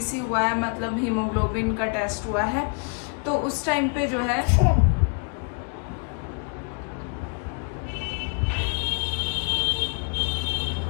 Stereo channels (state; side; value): quieter; right; 37.3 dB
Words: हुआ है, मतलब हीमोग्लोबिन का टेस्ट हुआ है। तो उस टाइम पे जो है